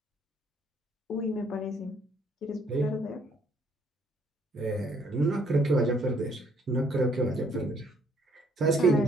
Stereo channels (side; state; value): both; normal; correlation 0.65